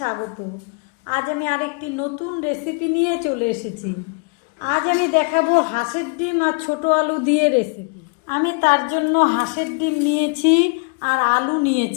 আজ আমি আরেকটি নতুন রেসিপি নিয়ে চলে এসেছি। আজ আমি দেখাবো হাঁসের ডিম আর ছোট আলু দিয়ে রেসিপি। আমি তার জন্য হাঁসের ডিম নিয়েছি আর আলু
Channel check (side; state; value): right; quieter; 34.1 dB